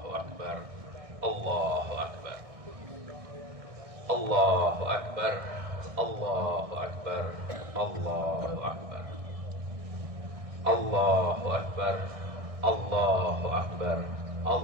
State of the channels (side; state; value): left; late; 1.6 ms